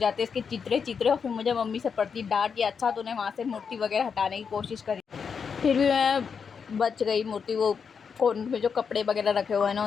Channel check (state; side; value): quieter; right; 6.2 dB